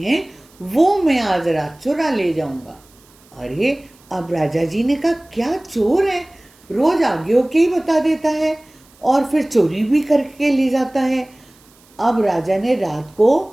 वो मैं आज रात चुरा ले जाऊंगा। अरे अब राजा जी ने कहा, क्या चोर है, रोज आगे होके ही बता देता है और फिर चोरी भी करके ले जाता है। अब राजा ने रात को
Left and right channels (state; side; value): noise; right; hiss, 29 dB below the sound